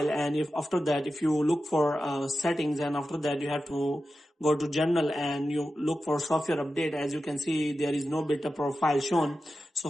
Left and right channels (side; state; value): both; normal; correlation 0.92